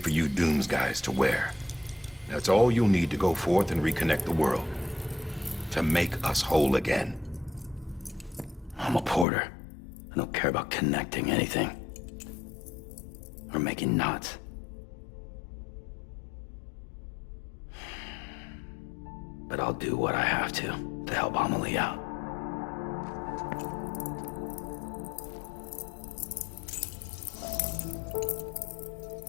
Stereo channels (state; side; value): drops out; right; at 9.2 s